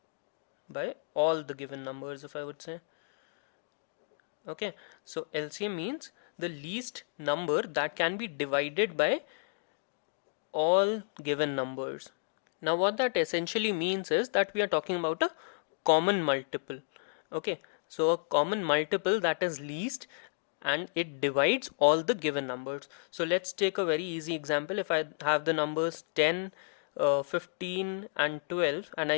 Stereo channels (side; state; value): right; silent; digital silence